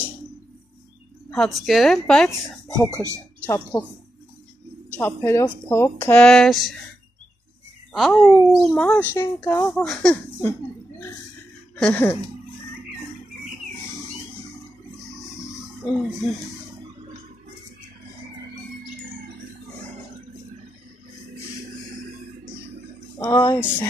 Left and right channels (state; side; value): normal; both; correlation 0.86